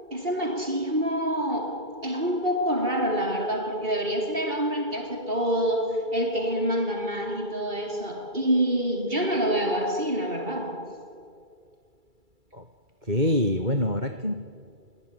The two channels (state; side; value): late; left; 2.3 ms